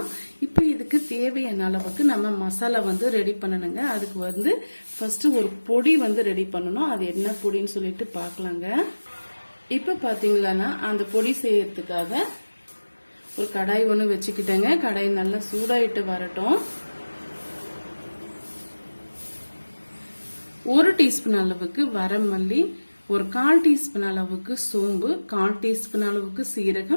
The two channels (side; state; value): both; inverted; correlation -1.00